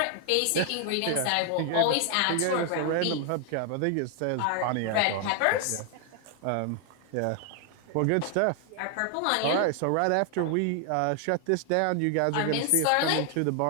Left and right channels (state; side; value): different; both; correlation 0.00